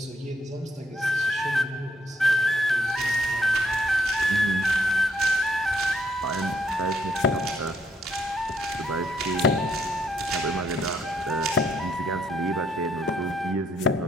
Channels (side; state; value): both; normal; correlation 0.71